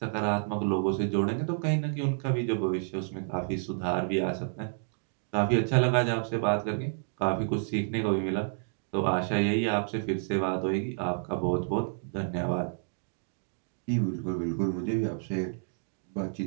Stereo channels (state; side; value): silent; left; digital silence